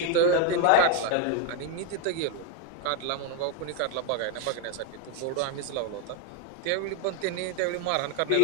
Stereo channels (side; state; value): both; different; correlation 0.01